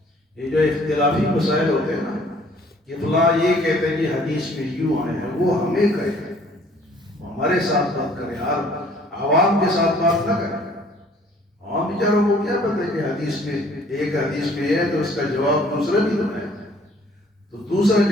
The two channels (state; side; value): normal; both; correlation 0.57